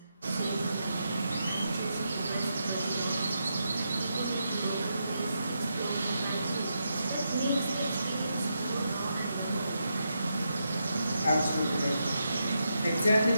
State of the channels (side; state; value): both; inverted; correlation -0.84